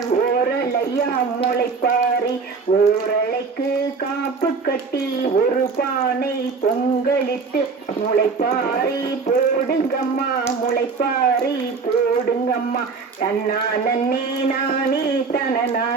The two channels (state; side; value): quieter; left; 4.8 dB